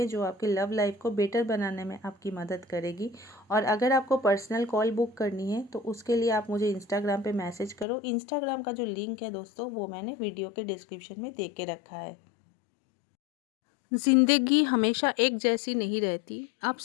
जो आपकी लव लाइफ को बेटर बनाने में आपकी मदद करेगी। और अगर आपको पर्सनल कॉल बुक करनी है तो उसके लिए आप मुझे इंस्टाग्राम पर मैसेज करो। इंस्टाग्राम का जो लिंक है दोस्तों वो मैंने वीडियो के डिस्क्रिप्शन में दे के रखा है। ज़िंदगी हमेशा एक जैसी नहीं रहती।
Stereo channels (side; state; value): right; drops out; at 7.9 s